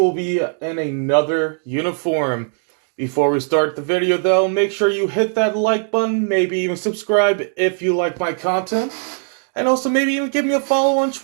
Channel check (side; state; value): left; silent; 56 dB below the other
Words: be in another uniform. Before we start the video though, make sure you hit that like button, maybe even subscribe if you like my content, and also maybe even give me a follow on